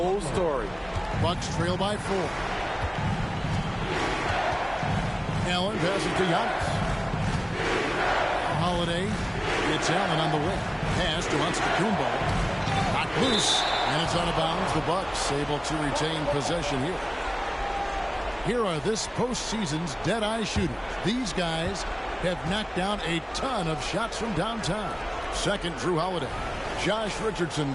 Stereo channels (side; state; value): both; identical; correlation 1.00